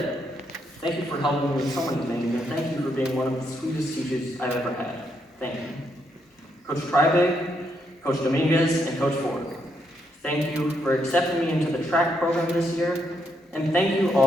Thank you for helping me with so many things, and thank you for being one of the sweetest teachers I've ever had. Thank you. Coach Tribig, Coach Dominguez, and Coach Ford, thank you for accepting me into the track program this year, and thank you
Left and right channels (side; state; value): both; normal; correlation 0.77